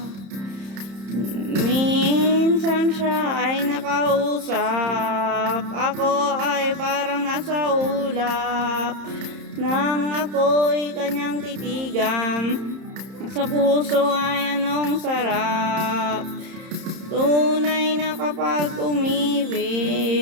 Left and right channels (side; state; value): left; late; 31 ms